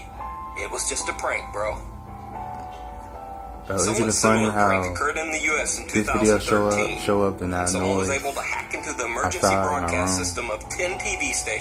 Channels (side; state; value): both; identical; correlation 1.00